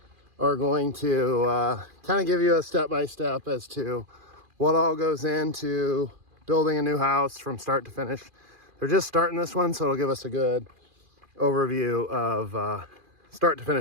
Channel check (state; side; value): late; left; 2.4 ms